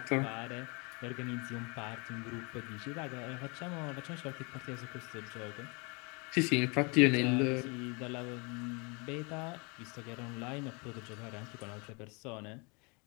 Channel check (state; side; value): quieter; right; 30.9 dB